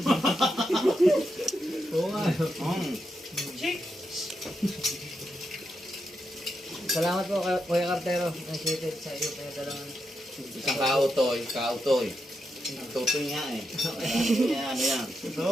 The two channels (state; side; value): normal; both; correlation 0.85